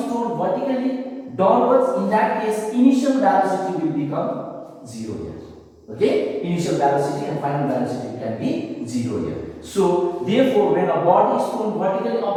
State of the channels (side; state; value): both; identical; correlation 1.00